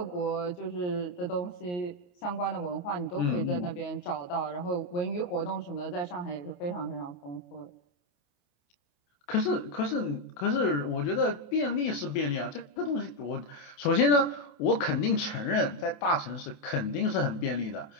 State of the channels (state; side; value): late; right; 28 ms